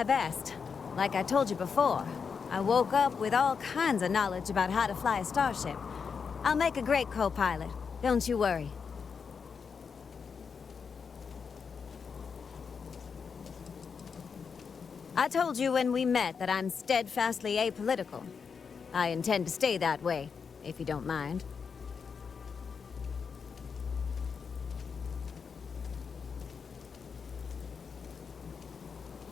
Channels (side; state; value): right; quieter; 5.9 dB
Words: best. Like I told you before, I woke up with all kinds of knowledge about how to fly a starship. I'll make a great co-pilot. Don't you worry. I told you when we met that I'm steadfastly apolitical. I intend to stay that way, if you don't mind.